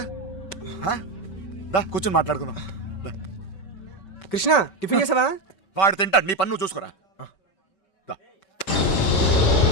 దా కూర్చొని మాట్లాడుకుందాం. దా. కృష్ణ, టిఫిన్ చేసావా? వాడు తింటాడు, నీ పన్ను చూసుకోరా. దా.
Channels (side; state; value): right; late; 5.2 ms